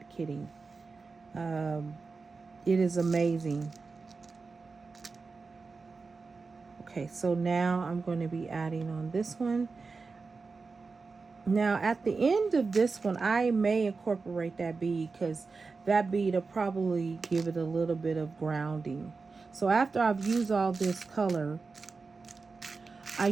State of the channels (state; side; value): quieter; left; 4.3 dB